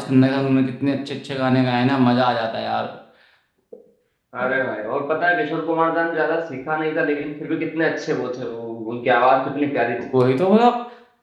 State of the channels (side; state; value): both; identical; correlation 1.00